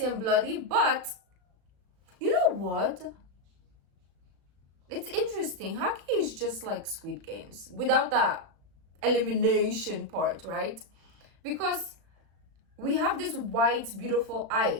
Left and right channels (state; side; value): late; left; 36 ms